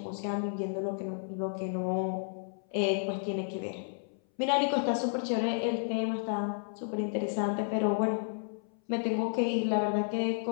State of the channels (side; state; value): right; silent; 57 dB below the other